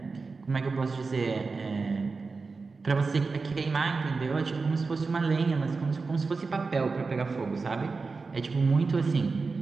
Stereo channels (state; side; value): quieter; left; 4.3 dB